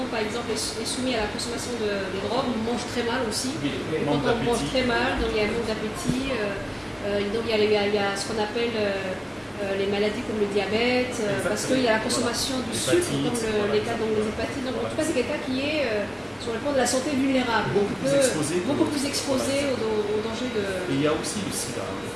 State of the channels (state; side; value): identical; both; correlation 1.00